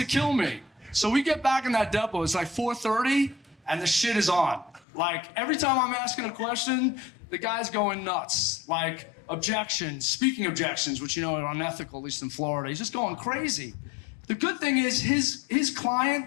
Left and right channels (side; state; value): right; drops out; at 4.9 s